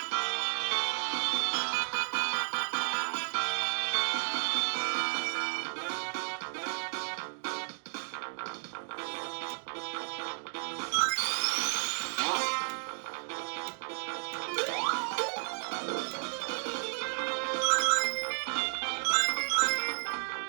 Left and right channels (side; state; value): left; silent; 56 dB below the other